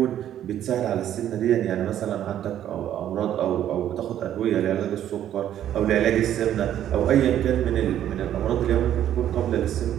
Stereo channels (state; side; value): quieter; left; 11.1 dB